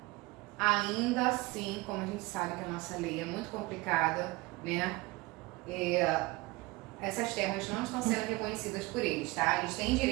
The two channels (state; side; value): quieter; left; 22.1 dB